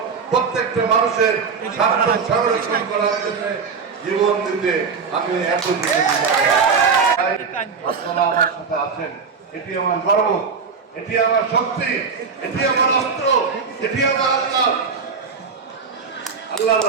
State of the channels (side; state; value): left; quieter; 5.5 dB